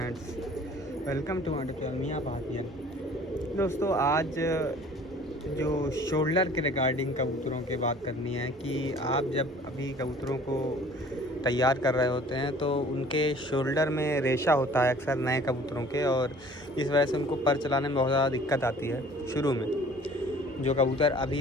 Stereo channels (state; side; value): normal; both; correlation 0.50